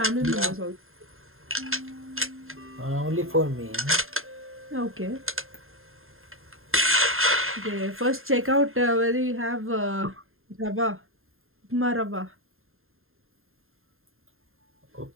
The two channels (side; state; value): left; late; 0.61 ms